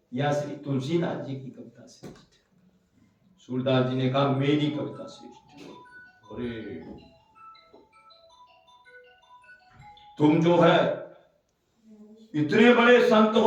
या श्री तुलसीदास जी की कविता श्रेष्ठ है? सूरदास जी ने कहा मेरी कविता श्रेष्ठ है। अरे तुम जो है इतने बड़े संत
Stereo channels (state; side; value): identical; both; correlation 1.00